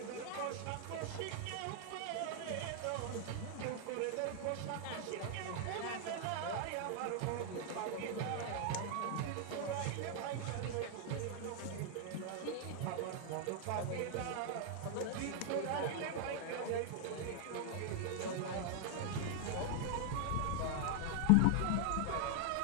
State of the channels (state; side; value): different; both; correlation 0.00